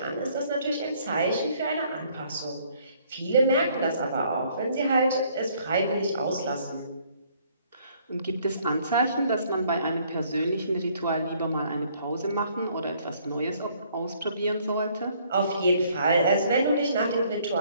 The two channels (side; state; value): both; inverted; correlation -0.63